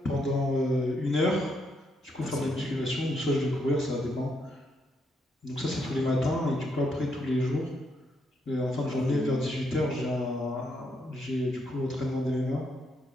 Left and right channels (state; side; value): normal; both; correlation 0.77